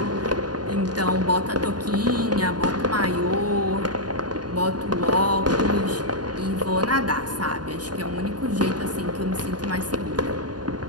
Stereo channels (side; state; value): left; late; 0.70 ms